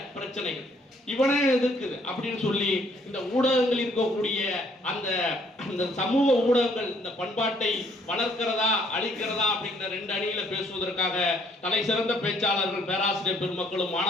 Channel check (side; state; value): both; normal; correlation 0.65